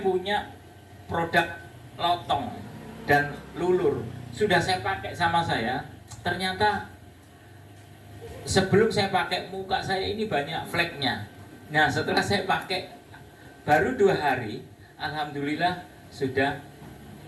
produk lotong dan lulur. Sudah saya pakai sama saya. Ternyata sebelum saya pakai muka saya ini banyak fleknya. Nah, setelah saya pakai baru 2 hari, alhamdulillah sudah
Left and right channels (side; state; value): both; identical; correlation 1.00